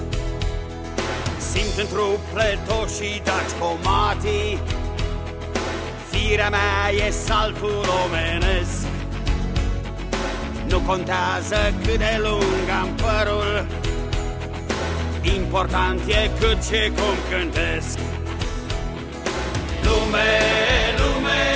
Simt în trup pletoșii daci comatii, firea mea e saltul omenesc. Nu contează cât de lung am părul, important e cât și cum cântesc. Lume, lume,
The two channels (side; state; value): both; identical; correlation 1.00